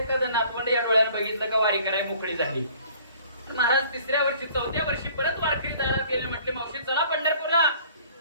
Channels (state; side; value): inverted; both; correlation -0.53